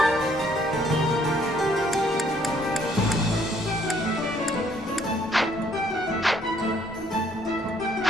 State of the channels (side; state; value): both; normal; correlation 0.65